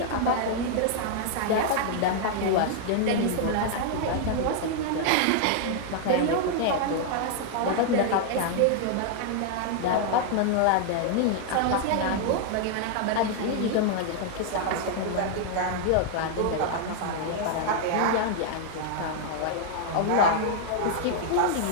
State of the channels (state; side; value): different; both; correlation 0.00